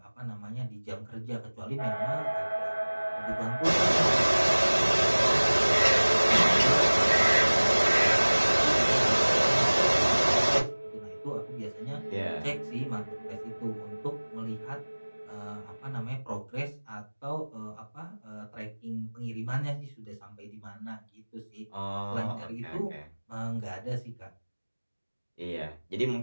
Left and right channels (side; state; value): both; inverted; correlation -1.00